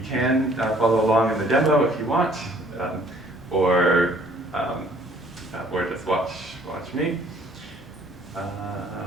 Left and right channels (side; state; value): both; normal; correlation 0.59